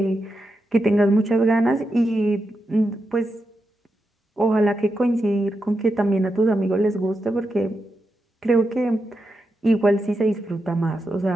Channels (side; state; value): both; normal; correlation 0.87